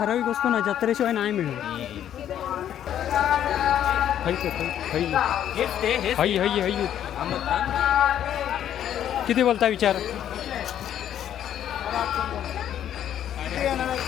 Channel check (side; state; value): right; quieter; 10.5 dB